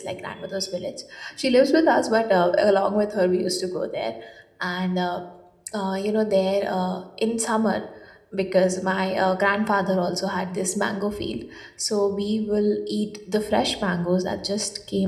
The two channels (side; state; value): both; identical; correlation 1.00